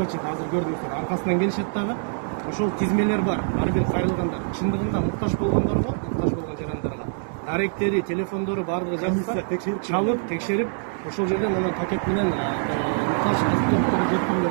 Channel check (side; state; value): left; silent; digital silence